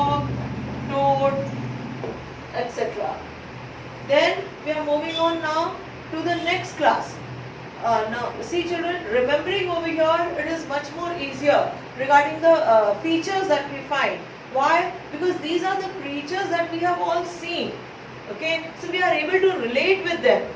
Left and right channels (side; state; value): both; identical; correlation 1.00